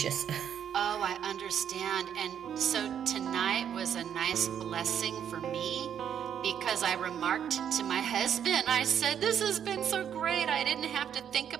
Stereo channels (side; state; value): left; quieter; 8.9 dB